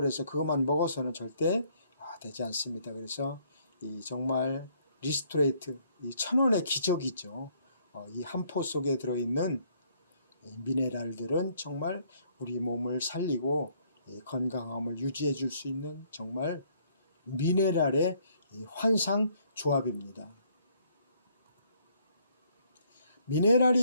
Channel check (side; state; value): both; inverted; correlation -0.66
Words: 그것만 먹어서는 절대 되지 않습니다. 그래서 이 정말 리스토레이트, 이 천원의 기적이죠. 이 한 포 속에 들어있는 미네랄들은 정말 우리 몸을 살리고 건강함을 유지해 줄 수 있는 정말 미네랄의 환상 조합입니다.